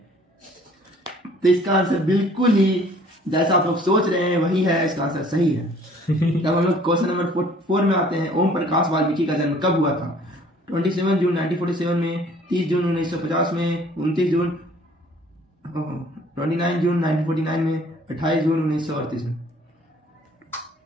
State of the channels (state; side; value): normal; both; correlation 0.55